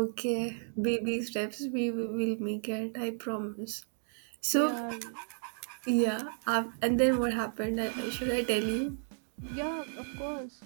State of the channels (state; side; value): silent; left; digital silence